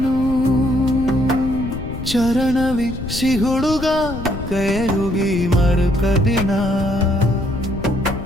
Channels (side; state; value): left; noise; rumble, 8 dB below the sound